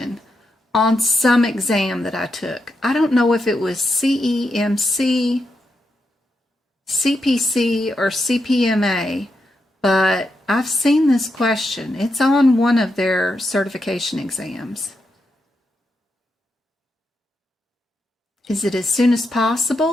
on some exam that I took. I don't know if it was CEMC, CPC, or CPMA, but I've seen this question. It's on one of their certification exams. Is it as soon as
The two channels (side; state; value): both; normal; correlation 0.84